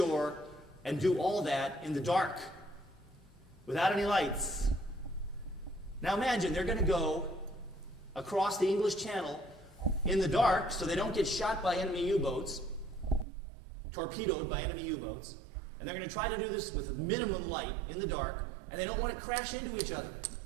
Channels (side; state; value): left; drops out; at 13.2 s